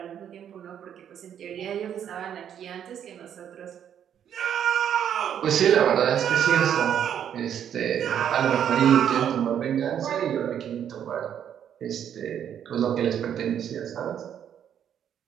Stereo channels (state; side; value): quieter; left; 9.3 dB